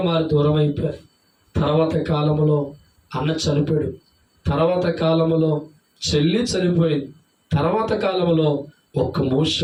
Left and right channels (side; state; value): both; identical; correlation 1.00